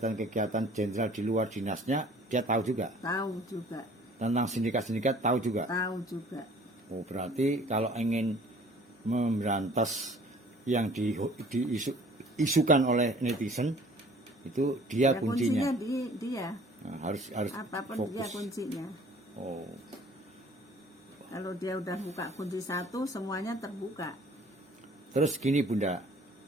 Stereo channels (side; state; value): both; normal; correlation 0.52